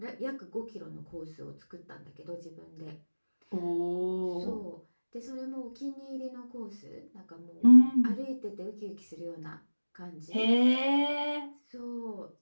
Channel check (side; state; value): both; inverted; correlation -1.00